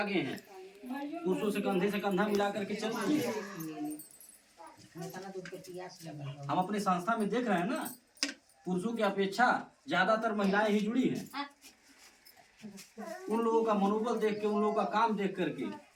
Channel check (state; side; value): identical; both; correlation 1.00